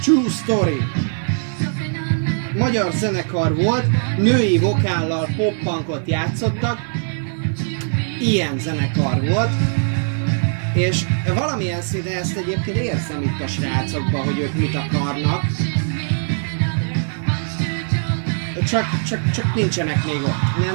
True Story. Magyar zenekar volt, női vokállal pop-punkot játszottak. Ilyen zenekar volt. És valamilyen szinten ezt egyébként érzem itt a srácokban, hogy ők mit akarnak. Csak nincsenek még ott.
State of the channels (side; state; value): left; silent; digital silence